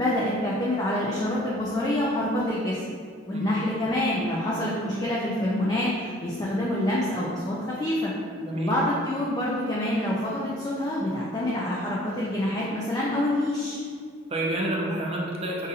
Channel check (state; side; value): normal; both; correlation 0.54